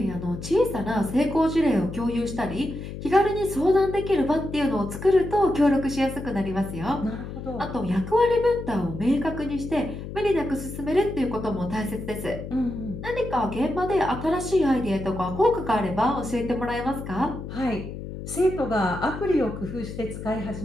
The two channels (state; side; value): noise; left; hum, 9 dB below the sound